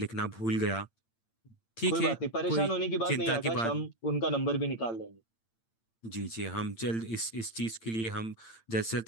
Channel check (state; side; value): late; right; 8.8 ms